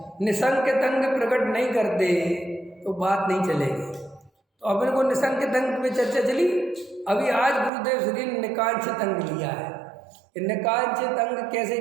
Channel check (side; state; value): left; drops out; at 7.7 s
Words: निसंक तंग प्रकट नहीं करते, तो बात नहीं चलेगी। तो अपन को निसंक तंग में चर्चा चली। अभी आज गुरुदेव श्री ने निकांक्ष तंग लिया है। निकांक्ष तंग कैसे